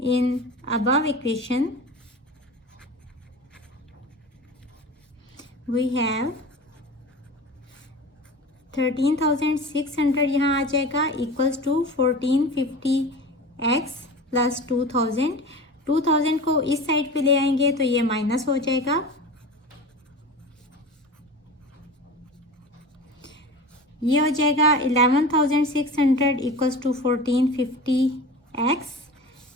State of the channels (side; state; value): both; normal; correlation 0.33